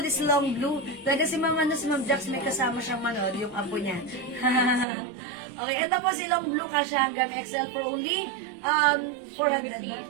is long blue. Talaga si Ma'am Jax, may kasama siyang manood, yung apo niya. Okay, ito po si long blue, kasya hanggang XL for only 400 ba?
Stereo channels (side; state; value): left; drops out; at 4.9 s